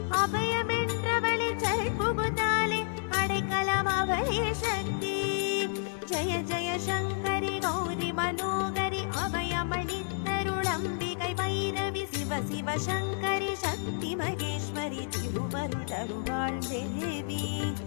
அபயமென்றவளே சரண் புகுந்தாலே அடைக்கலம் அவளே சக்தி ஜய ஜய சங்கரி கௌரி மனோகரி அபயமளித்தருளம்பிகை பைரவி சிவ சிவ சங்கரி சக்தி மகேஸ்வரி திருவருள் தருவாள் தேவி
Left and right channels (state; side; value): silent; right; digital silence